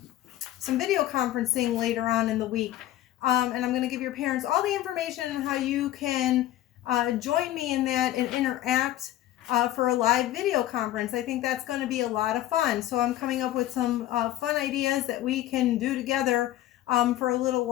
some video conferencing later on in the week, and I'm going to give your parents all the information on how you can join me in that and interact for a live video conference. I think that's going to be a lot of fun. So I'm coming up with some fun ideas that we can do together for a little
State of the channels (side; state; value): right; quieter; 13.8 dB